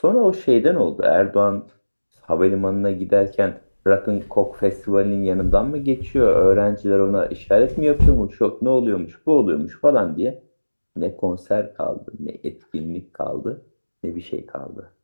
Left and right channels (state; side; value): inverted; both; correlation -1.00